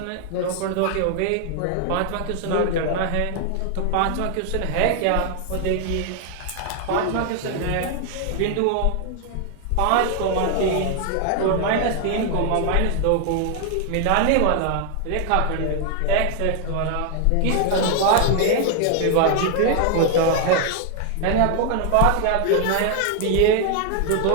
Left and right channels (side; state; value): both; different; correlation 0.00